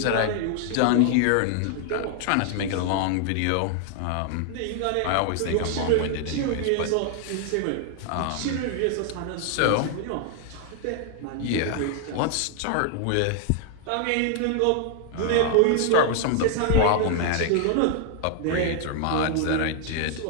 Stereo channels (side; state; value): both; different; correlation 0.00